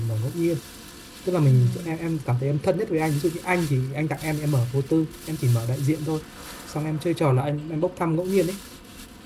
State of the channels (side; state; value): both; identical; correlation 1.00